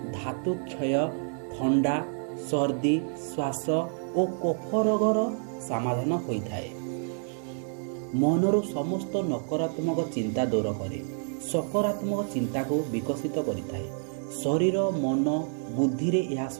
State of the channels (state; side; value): silent; left; 59 dB below the other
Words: ଧାତୁ କ୍ଷୟ, ଥଣ୍ଡା, ସର୍ଦ୍ଦି, ଶ୍ୱାସ ଓ କଫ ରୋଗର ସମାଧାନ ହୋଇଥାଏ। ମନରୁ ସମସ୍ତ ନକାରାତ୍ମକ ଚିନ୍ତା ଦୂର କରେ, ସକାରାତ୍ମକ ଚିନ୍ତାକୁ ବିକଶିତ କରିଥାଏ। ଶରୀର, ମନ, ବୁଦ୍ଧିରେ ଏହା